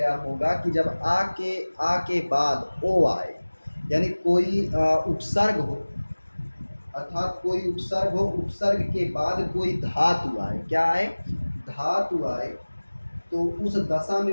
होगा कि जब आ के बाद ओ आए, यानी कोई उपसर्ग हो, अर्थात कोई उपसर्ग हो, उपसर्ग के बाद कोई धातु आए, क्या आए? धातु आए, तो उस दशा में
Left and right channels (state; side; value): inverted; both; correlation -1.00